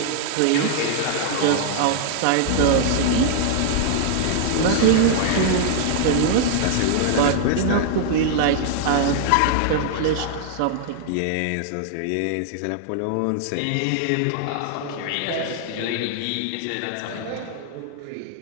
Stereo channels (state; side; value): different; both; correlation -0.01